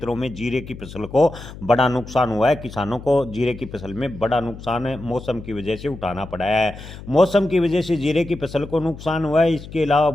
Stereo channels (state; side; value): noise; left; hum, 14 dB below the sound